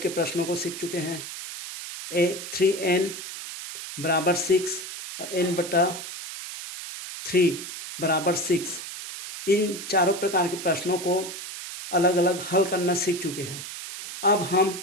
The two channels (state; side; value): noise; right; hiss, 9 dB below the sound